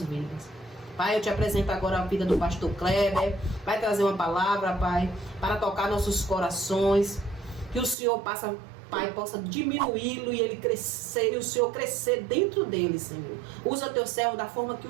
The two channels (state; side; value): drops out; left; at 8.0 s